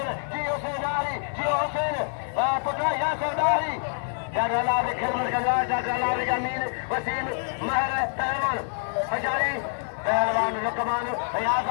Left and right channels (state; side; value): silent; right; digital silence